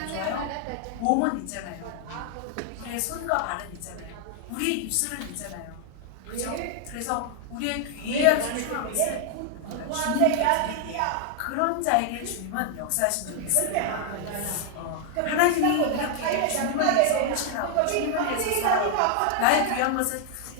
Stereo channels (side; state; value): both; different; correlation 0.00